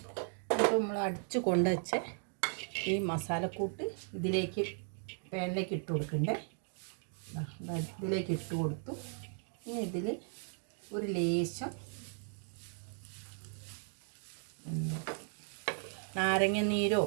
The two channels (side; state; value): left; silent; 53 dB below the other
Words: അപ്പോൾ നമ്മൾ അടിച്ച് കൊണ്ടുവച്ച് ഈ മസാലക്കൂട്ട് ഇതിലേക്ക് പാനിലേക്ക് ഇട്ട് കൊടുക്കണ്ടേ. ഇതിലേക്ക് ഇട്ട് കൊടുത്തു. ഇനി ഇതിൽ ഒരു ലേശം നാരങ്ങ നീരോ